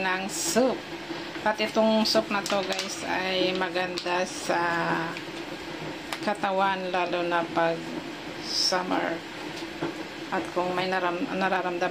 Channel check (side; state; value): both; identical; correlation 1.00